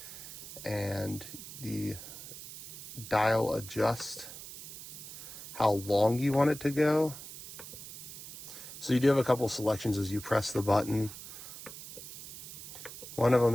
and the dial adjusts how long you want it to go. So you do have a couple selections as you press the button. One of them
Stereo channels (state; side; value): noise; right; hiss, 12 dB below the sound